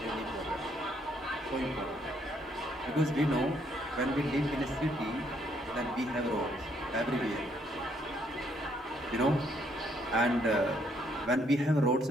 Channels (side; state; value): both; normal; correlation 0.70